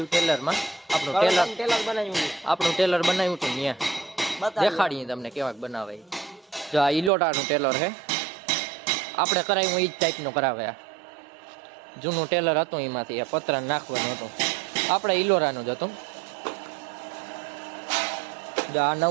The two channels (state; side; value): drops out; left; at 7.1 s